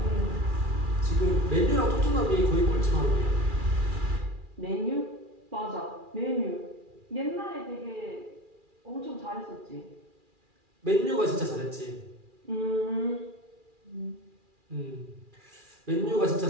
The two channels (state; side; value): late; left; 2.4 ms